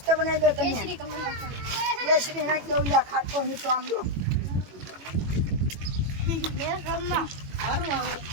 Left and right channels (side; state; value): left; late; 21 ms